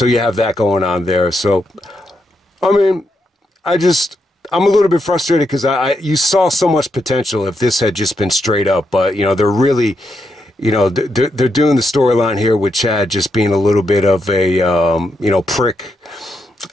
you have that going on there. So I mean, I'm a little bit frustrated because you saw so much potential if this had just been straight up, but they're really, they're doing the storyline here with Chad just being a little bit of a prick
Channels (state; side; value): normal; both; correlation 0.82